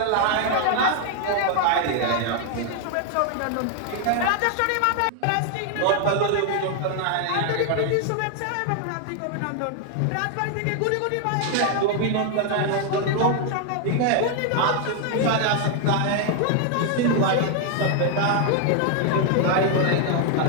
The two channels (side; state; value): both; different; correlation 0.00